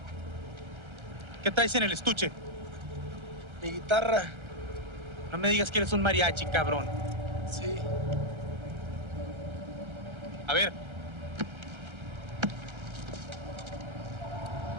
¿Qué traes en el estuche? Mi guitarra. No me digas que eres un mariachi, cabrón. Sí. A ver.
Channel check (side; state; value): left; late; 1.3 ms